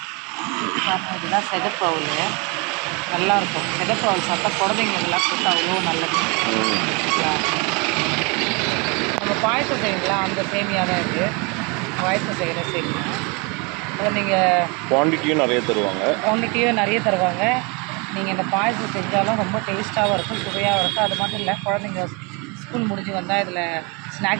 இதுதான் செகப்பவுல், நல்லாயிருக்கும். செகப்பவுல் சாப்பிட்டா குழந்தைங்களுக்கெல்லாம் கொடுத்தா அவ்வளோ நல்லது. நம்ம பாயசம் செய்யுங்களா, அந்த சேமியா தான் இருக்குது. பாயசம் செய்கிற சேமியா. அதை நீங்கள் குவான்டிட்டியும் நிறைய தருவாங்க. நீங்கள் இந்த பாயசம் செஞ்சாலும் ரொம்ப டேஸ்ட்டாகவும் இருக்கும், சுவையாகவும் இருக்கும். அது மட்டும் இல்லை, குழந்தைங்க ஸ்கூல் முடிஞ்சு வந்தால் இதில்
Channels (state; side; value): quieter; left; 30.2 dB